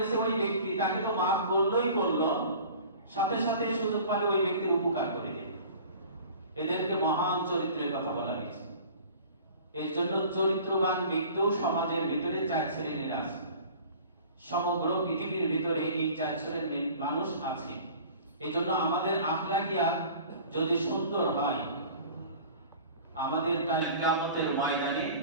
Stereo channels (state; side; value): inverted; both; correlation -0.44